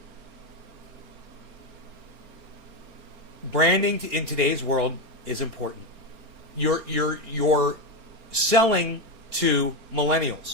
Branding in today's world is important. You're selling to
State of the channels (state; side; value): late; left; 4.3 ms